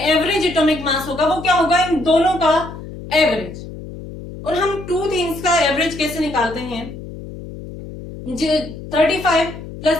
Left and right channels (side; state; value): left; noise; hum, 12 dB below the sound